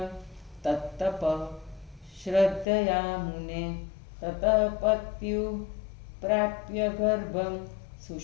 तत्तपः श्रद्धया मुने ततः पत्यु प्राप्य गर्भं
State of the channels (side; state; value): right; drops out; at 2.7 s